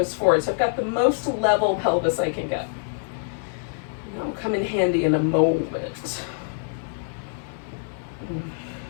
forward. So I've got the most level pelvis I can get. That'll come in handy in a moment.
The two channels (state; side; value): silent; right; digital silence